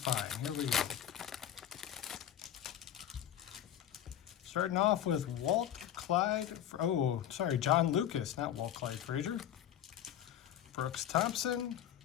Here we go. Starting off with John Lucas, not Walt Clyde Frazier. Brooks Thompson,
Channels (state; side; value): quieter; right; 10.6 dB